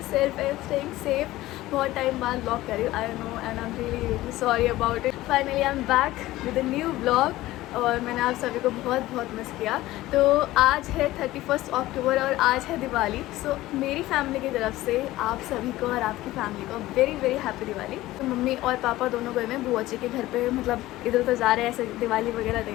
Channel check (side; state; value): right; quieter; 16.8 dB